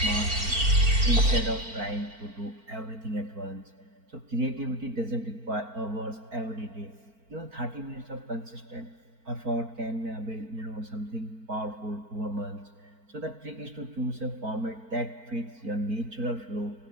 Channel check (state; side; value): late; left; 4.4 ms